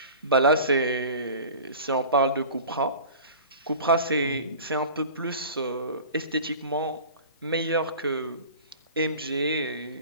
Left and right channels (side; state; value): both; inverted; correlation -0.39